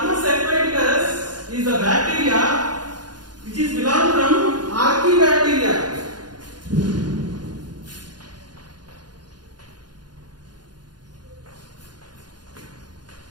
aquaticus is a bacteria which is belong from Archaebacteria.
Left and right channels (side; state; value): left; late; 0.70 ms